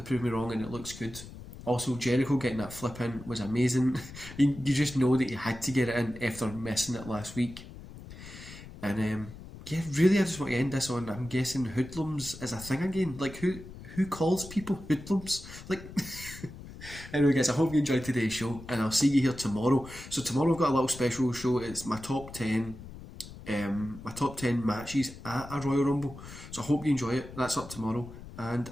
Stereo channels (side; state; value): left; noise; rumble, 15 dB below the sound